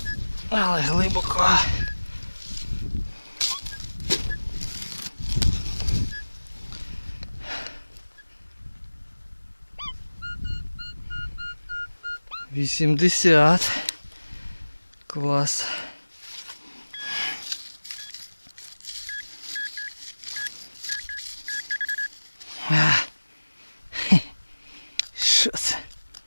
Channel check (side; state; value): both; inverted; correlation -1.00